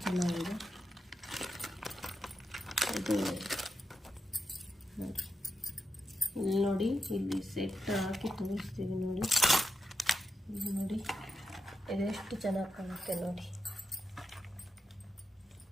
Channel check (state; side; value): normal; both; correlation 0.87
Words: ಚೆನ್ನಾಗಿದೆ. ಇದು ನೋಡಿ, ಇಲ್ಲಿ ನೋಡಿ, ಇಲ್ಲಿ ಸೆಟ್ ಹಾಕಿ ತೋರಿಸ್ತೀವಿ ನೋಡಿ. ಇದು ನೋಡಿ ಇದೆಷ್ಟು ಚೆನ್ನಾಗಿ ಕಾಣುತ್ತೆ ನೋಡಿ.